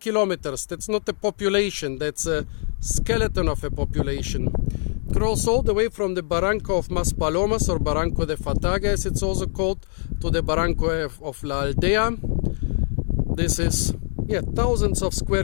That's not a population, that's a skeleton of a population. It grows all the way from the Barranco of Maspalomas, or Barranco de Fataga as it's also called, to the Barranco of La Aldea. This is, thousands of square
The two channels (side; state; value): right; silent; 60 dB below the other